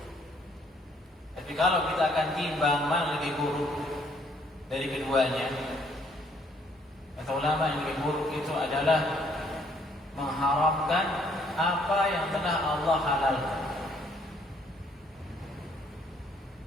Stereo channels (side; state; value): both; normal; correlation 0.65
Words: Tapi kalau kita akan timbang mana lebih buruk dari keduanya, kata ulama yang lebih buruk itu adalah mengharamkan apa yang telah Allah halalkan.